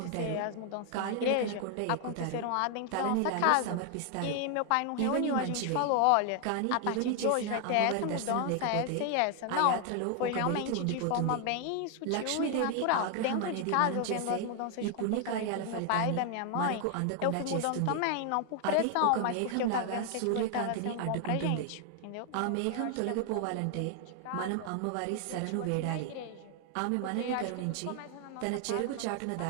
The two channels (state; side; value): different; both; correlation 0.00